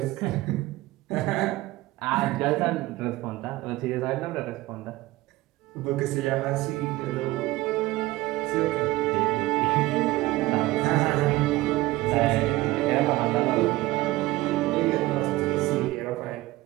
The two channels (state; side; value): quieter; left; 18.5 dB